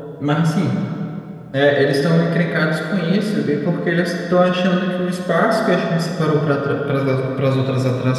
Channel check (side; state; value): both; identical; correlation 1.00